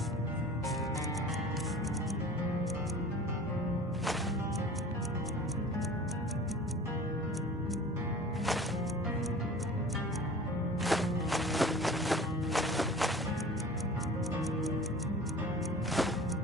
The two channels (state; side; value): normal; both; correlation 0.42